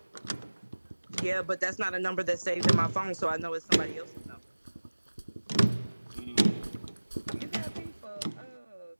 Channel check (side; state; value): both; inverted; correlation -1.00